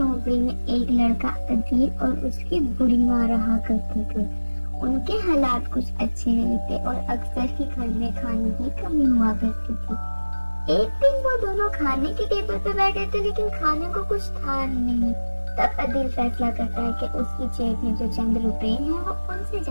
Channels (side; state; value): both; inverted; correlation -1.00